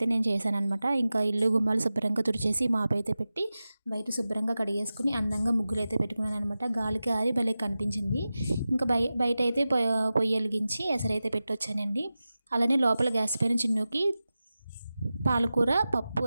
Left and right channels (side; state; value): both; inverted; correlation -0.95